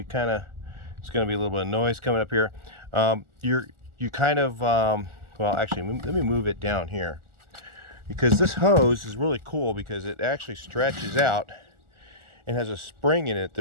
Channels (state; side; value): late; left; 1.4 ms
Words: going to be a little bit of noise coming up here. You kind of, well, actually, let me move it down here, because this hose is really cool because it actually stretches out and has a spring in it